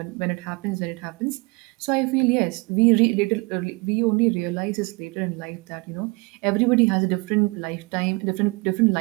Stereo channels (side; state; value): left; quieter; 28.0 dB